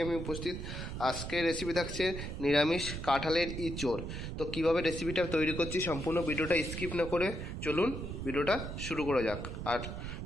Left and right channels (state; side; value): noise; right; rumble, 6 dB below the sound